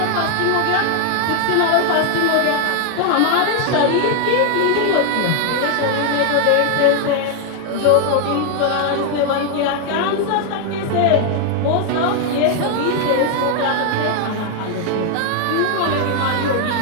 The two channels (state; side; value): different; both; correlation 0.00